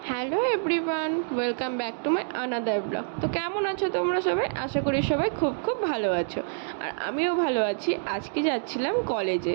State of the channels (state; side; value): silent; left; digital silence